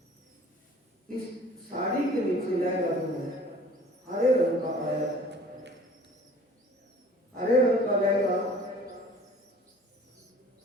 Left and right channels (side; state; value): both; normal; correlation 0.49